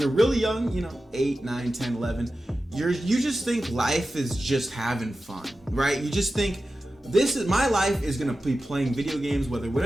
really young, 8, 9, 10, 11, you just think life is just having fun, right? You just think my life is gonna be playing video games,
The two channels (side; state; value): both; normal; correlation 0.93